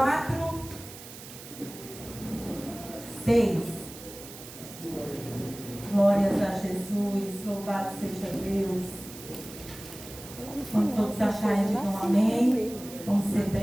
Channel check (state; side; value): noise; right; hiss, 15 dB below the sound